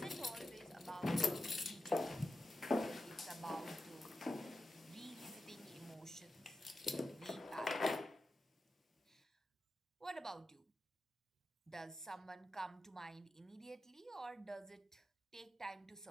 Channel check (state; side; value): normal; both; correlation 0.91